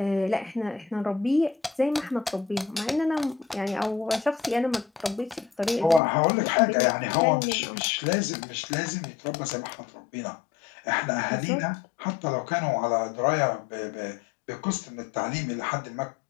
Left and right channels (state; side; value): drops out; right; at 6.0 s